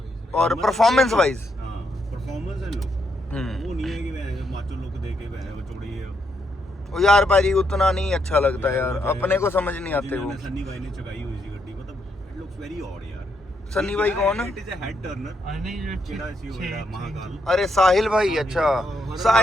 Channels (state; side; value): normal; both; correlation 0.77